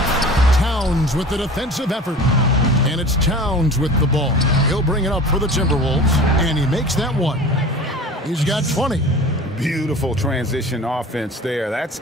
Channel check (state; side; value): normal; both; correlation 0.39